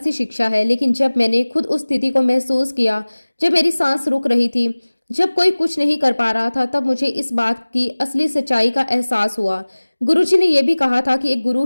शिक्षा है, लेकिन जब मैंने खुद उस स्थिति को महसूस किया, जब मेरी सांस रुक रही थी, जब कोई कुछ नहीं कर पा रहा था, तब मुझे इस बात की असली सच्चाई का एहसास हुआ। गुरुजी ने यह भी कहा था कि एक गुरु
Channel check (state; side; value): inverted; both; correlation -1.00